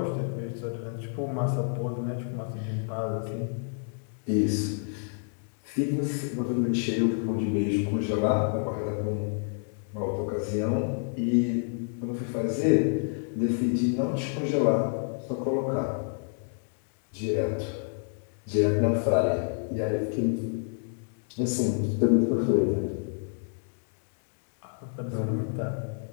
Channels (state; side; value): silent; right; 59 dB below the other